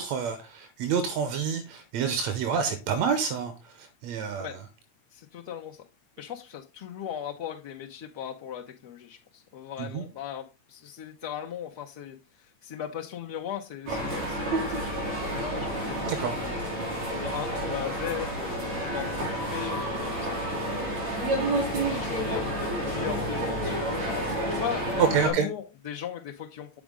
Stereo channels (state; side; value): late; left; 8.7 ms